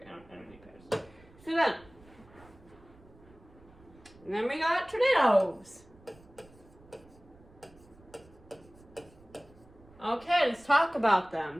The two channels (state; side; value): noise; right; rumble, 25 dB below the sound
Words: I don't need patterns. So then we got tornadoes. Okay, let's talk about